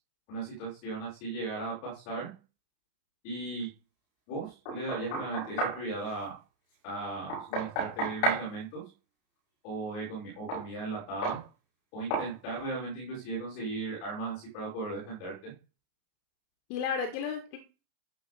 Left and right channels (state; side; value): late; right; 32 ms